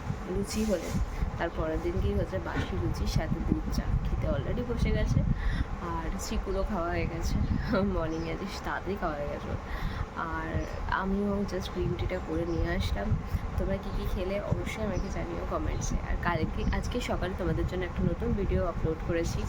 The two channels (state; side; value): identical; both; correlation 1.00